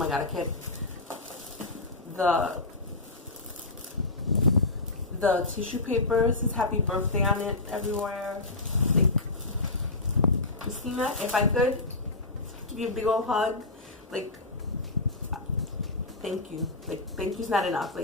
god, I can't. The tissue paper says happy birthday on it everywhere. Like, Christina, if I could give you a big old hug, like, thank you. Like, thank you's not enough.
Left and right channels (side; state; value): right; quieter; 3.0 dB